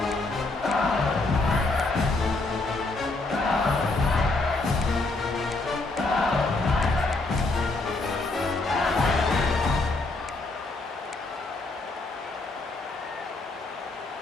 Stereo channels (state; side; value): quieter; right; 3.2 dB